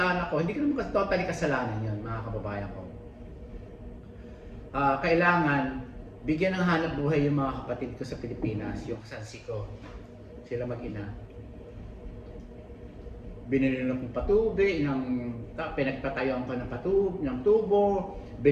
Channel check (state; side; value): identical; both; correlation 1.00